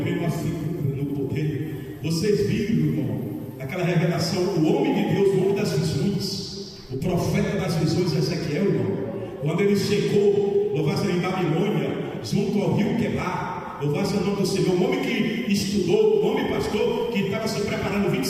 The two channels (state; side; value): identical; both; correlation 1.00